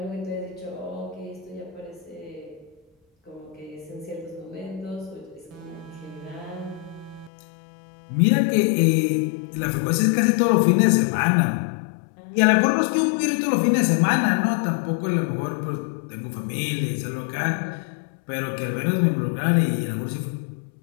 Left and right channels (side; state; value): right; drops out; at 7.3 s